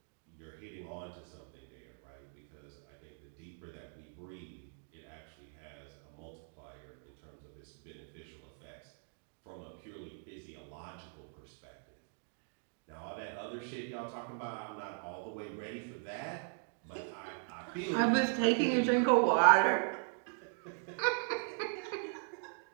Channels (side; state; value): left; silent; 52 dB below the other